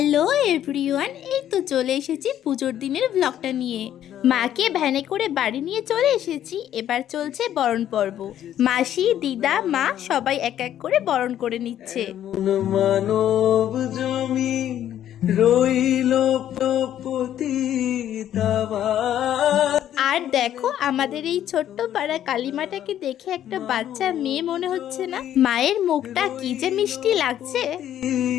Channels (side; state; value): right; quieter; 11.2 dB